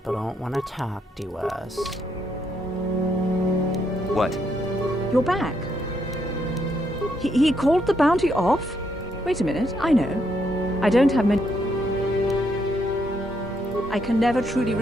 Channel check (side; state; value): both; normal; correlation 0.75